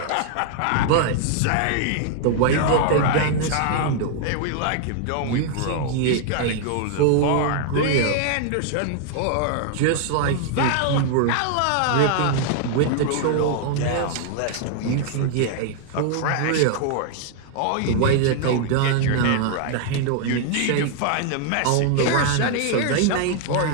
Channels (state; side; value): different; both; correlation 0.00